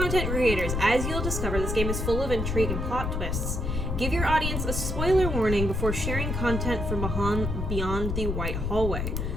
creators, as you'll discover, this game is full of intrigue and plot twists. Give your audience a spoiler warning before sharing content from beyond the white hallway,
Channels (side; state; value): left; noise; rumble, 2 dB below the sound